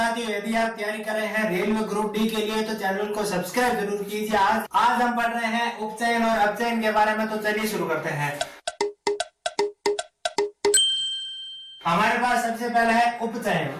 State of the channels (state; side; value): identical; both; correlation 1.00